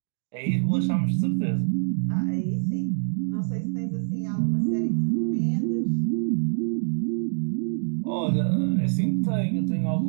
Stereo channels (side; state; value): left; silent; digital silence